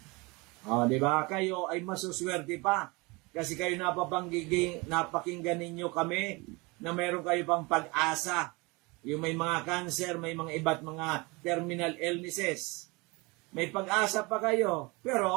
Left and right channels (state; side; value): quieter; left; 25.9 dB